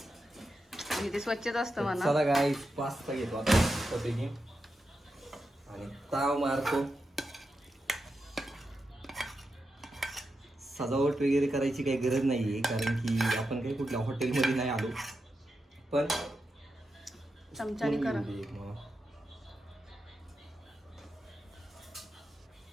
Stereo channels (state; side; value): normal; both; correlation 0.88